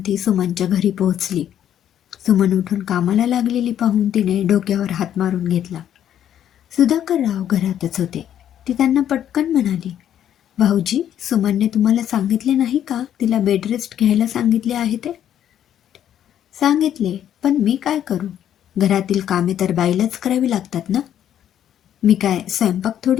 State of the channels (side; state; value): right; quieter; 10.4 dB